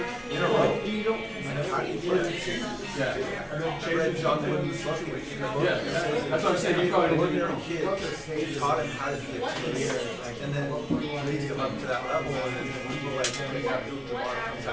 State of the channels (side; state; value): both; identical; correlation 1.00